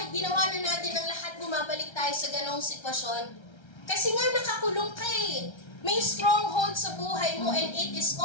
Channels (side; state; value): right; late; 1.3 ms